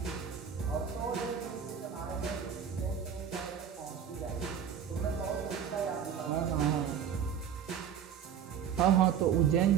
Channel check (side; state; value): left; quieter; 8.1 dB